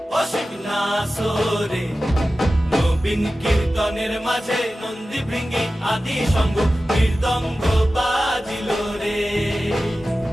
অসিক নাসরে নবীন কীর্তনের মাঝে নন্দী ভৃঙ্গি আদি সঙ্গ মৃদঙ্গ বাজিল রে।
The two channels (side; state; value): both; normal; correlation 0.95